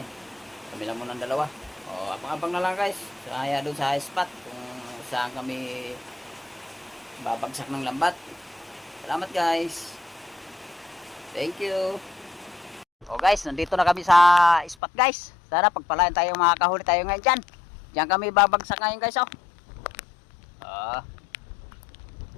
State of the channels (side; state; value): right; drops out; at 14.8 s